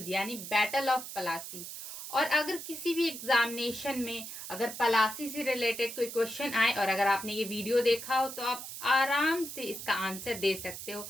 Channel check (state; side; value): noise; right; hiss, 9 dB below the sound